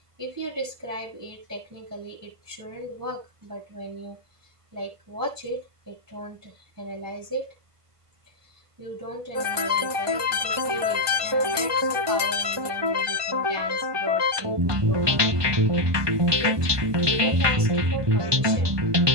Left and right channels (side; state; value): left; late; 1.2 ms